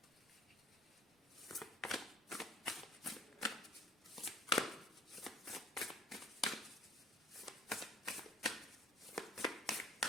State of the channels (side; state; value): both; normal; correlation 0.49